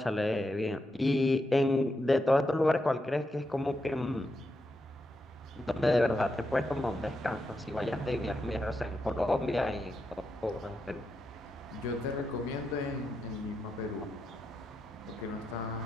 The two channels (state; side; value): normal; both; correlation 0.85